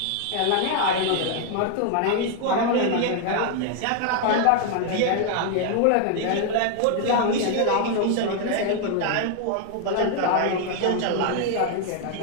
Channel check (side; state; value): both; different; correlation 0.00